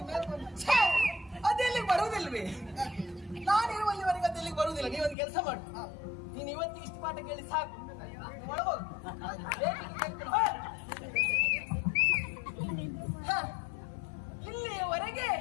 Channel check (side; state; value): right; drops out; at 5.2 s